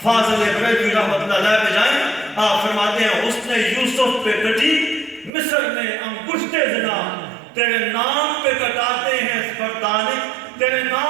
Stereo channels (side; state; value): left; drops out; at 5.3 s